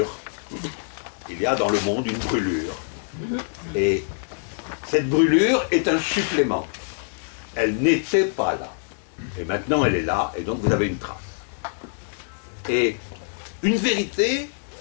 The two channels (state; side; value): silent; right; 62 dB below the other